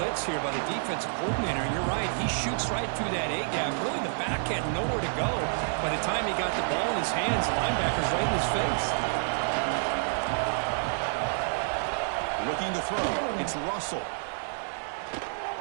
here by the defensive coordinator. And you're right, he shoots right through that A-gap. Really, the back had nowhere to go. By the time he got the ball in his hands, the linebacker's right in his face. Looking to throw. It's Russell.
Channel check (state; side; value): silent; left; 59 dB below the other